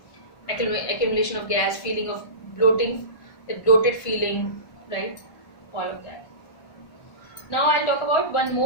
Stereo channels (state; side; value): late; right; 1.5 ms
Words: accumulation of gas, feeling of bloating, that bloated feeling, right? All of that. Now I'll talk about one